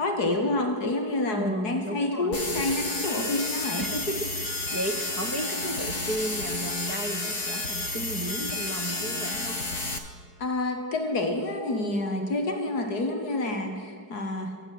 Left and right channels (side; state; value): right; late; 4.7 ms